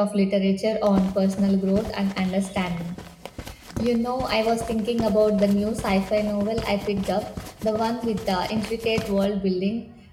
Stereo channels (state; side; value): identical; both; correlation 1.00